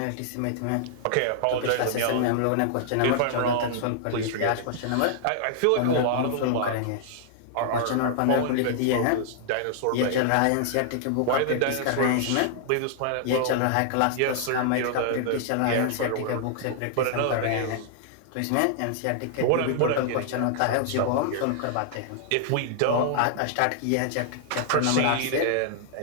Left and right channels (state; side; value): different; both; correlation -0.01